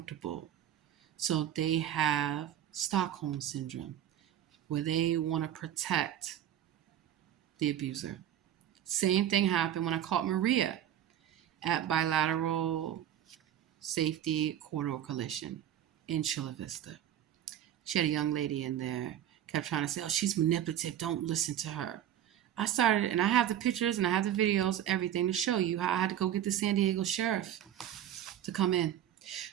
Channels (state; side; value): quieter; left; 11.0 dB